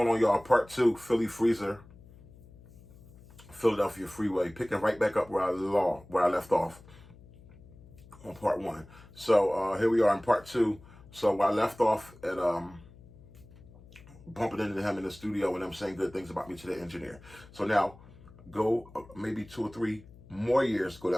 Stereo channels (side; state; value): left; noise; hum, 22 dB below the sound